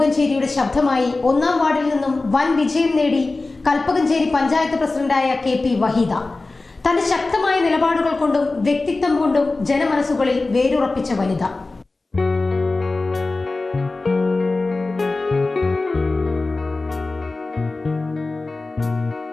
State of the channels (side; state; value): right; quieter; 3.4 dB